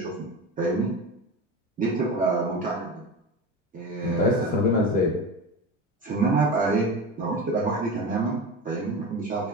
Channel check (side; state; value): both; normal; correlation 0.27